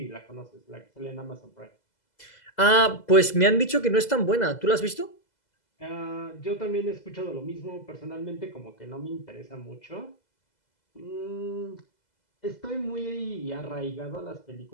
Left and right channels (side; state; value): right; late; 2.0 ms